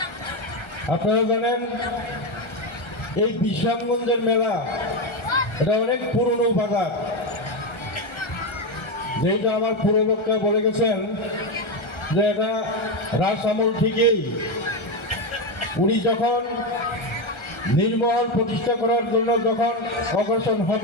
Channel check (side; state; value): right; late; 1.3 ms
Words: আপনারা জানেন এই বিশ্রামগঞ্জের মেলা এটা অনেক পুরনো বাজার, যেটা আমার পূর্ববক্তা বলে গেছেন যে এটা রাজ আমল থেকেই উনি যখন নির্মহল প্রতিষ্ঠা করার জন্য যখন অগ্রসর